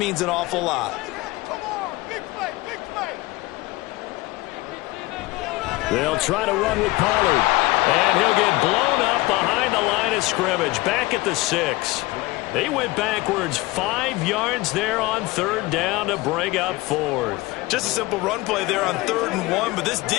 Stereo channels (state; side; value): quieter; right; 20.7 dB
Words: an awful lot. They'll try to run with Pollard, and he'll get blown up behind the line of scrimmage, back at the 6. They went backwards 5 yards there on third down to bring up fourth. Just a simple run play there on 3rd and 1, but this